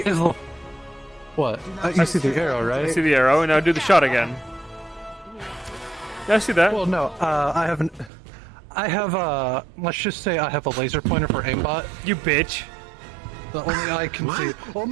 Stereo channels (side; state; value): left; drops out; at 8.1 s